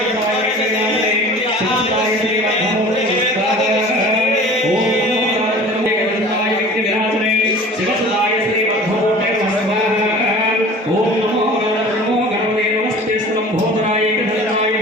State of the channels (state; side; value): normal; both; correlation 0.42